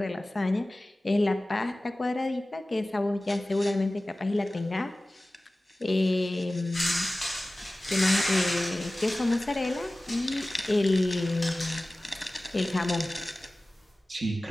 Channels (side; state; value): both; normal; correlation 0.97